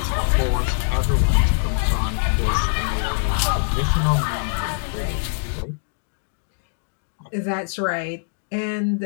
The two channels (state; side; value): silent; right; digital silence